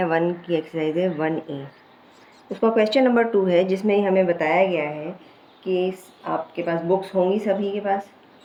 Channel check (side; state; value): both; identical; correlation 1.00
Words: 1 की एक्सरसाइज है 1A। उसका क्वेश्चन नंबर 2 है जिसमें हमें बताया गया है कि आपके पास बुक्स होंगी सभी के पास।